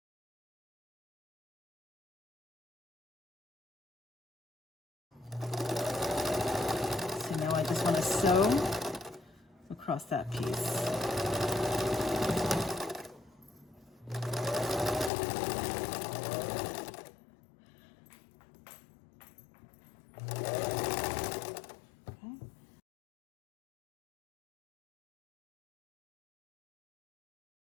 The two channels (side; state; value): right; drops out; at 15.1 s